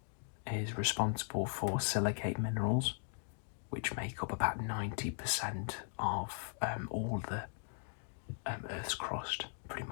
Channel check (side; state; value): right; silent; 52 dB below the other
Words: is responsible for silicate minerals, which make up about 90% of all the Earth's crust, pretty